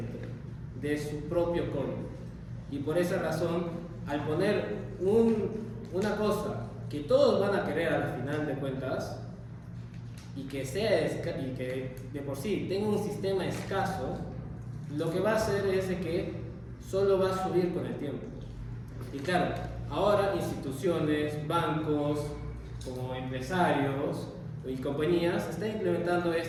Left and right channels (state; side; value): identical; both; correlation 1.00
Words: de su propio código. Y por esa razón, al poner una cosa que todos van a querer al final de cuentas y que de por sí tenga un sistema escaso, lo que va a hacer es de que solo va a subir con el tiempo. Y claro, ahora instituciones, bancos, como empresarios y compañías están implementando